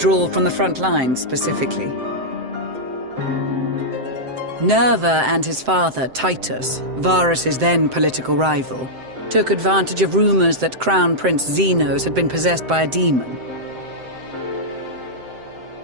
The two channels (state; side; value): late; left; 7.7 ms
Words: from the front lines, specifically. Nerva and his father, Titus, Varus's then political rival, took advantage of rumors that Crown Prince Zenos had been possessed by a demon.